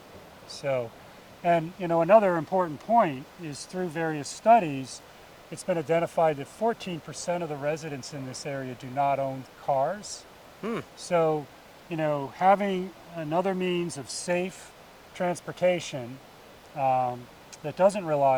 So, and another important point is through various studies, it's been identified that 14% of the residents in this area do not own cars. So, having another means of safe transportation that doesn't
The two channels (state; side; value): identical; both; correlation 1.00